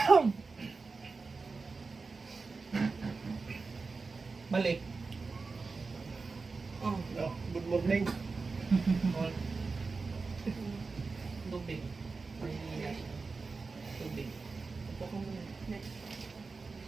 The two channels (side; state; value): left; quieter; 4.2 dB